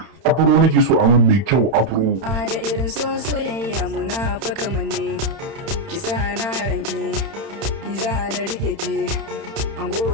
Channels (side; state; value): left; late; 31 ms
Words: afro nake so a mun mai kyau afro. A da irin soyayya muna faka manne. Ki sa na ranki, ni za na rike ki.